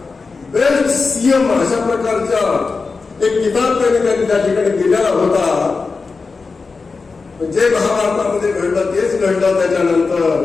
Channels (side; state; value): right; quieter; 4.4 dB